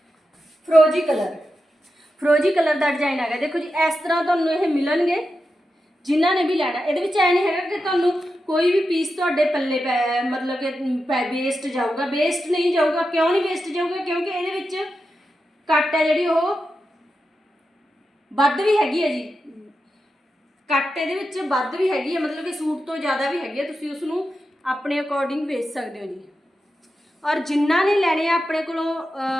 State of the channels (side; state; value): both; normal; correlation 0.89